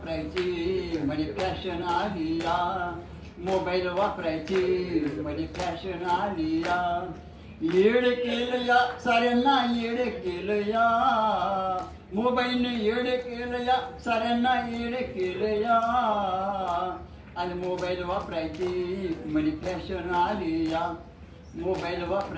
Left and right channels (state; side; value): identical; both; correlation 1.00